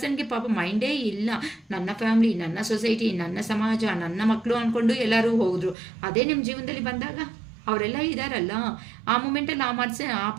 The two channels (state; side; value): drops out; left; at 5.8 s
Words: ಪಾಪ ಮೈಂಡೇ ಇಲ್ಲ. ನನ್ನ ಫ್ಯಾಮಿಲಿ, ನನ್ನ ಸೊಸೈಟಿ, ನನ್ನ ಸಮಾಜ, ನನ್ನ ಮಕ್ಕಳು ಅಂದ್ಕೊಂಡು ಎಲ್ಲರೂ ಹೋದ್ರು. ಅದೇ ನಿಮ್ಮ ಜೀವನದಲ್ಲಿ ಬಂದಾಗ ಅವರೆಲ್ಲ ಇದ್ದಾರಲ್ಲ, ಆ ಮೂಮೆಂಟಲ್ಲಿ ಆ